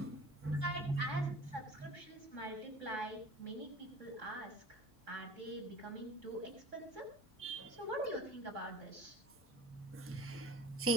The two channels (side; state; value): both; normal; correlation 0.42